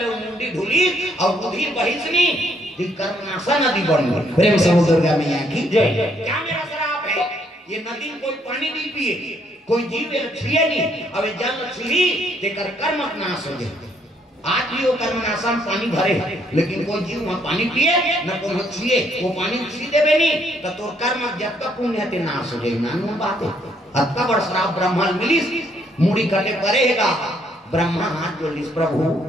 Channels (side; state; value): both; normal; correlation 0.70